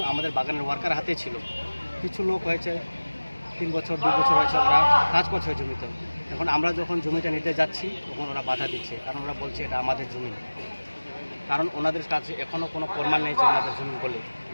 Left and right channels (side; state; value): both; inverted; correlation -1.00